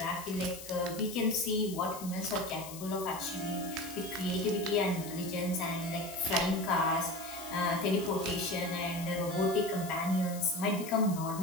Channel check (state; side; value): noise; left; hiss, 13 dB below the sound